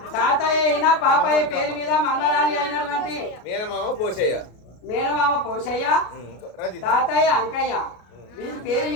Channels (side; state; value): right; late; 33 ms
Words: తాతయ్య అయినా పాపయ్య పేరు మీద మన్మరాలి అయినటువంటి మేనమామ పోసయ్య. మేనమామ పోషయ్య, రజిత, తాతయ్య అంకయ్య, వీరి పేరు